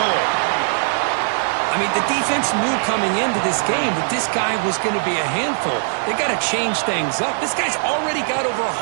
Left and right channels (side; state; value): left; silent; digital silence